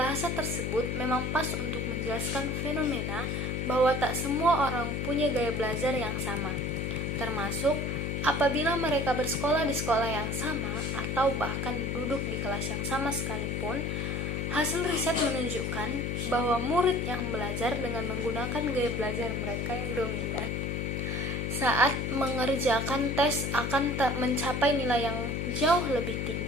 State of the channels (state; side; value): noise; left; hum, 1 dB below the sound